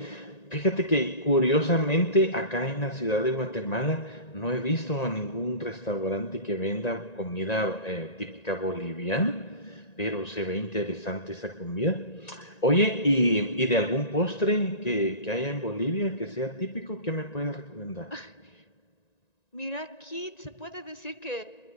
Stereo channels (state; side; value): late; right; 1.9 ms